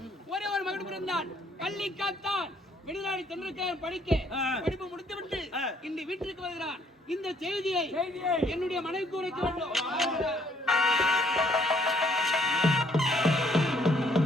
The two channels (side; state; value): both; normal; correlation 0.65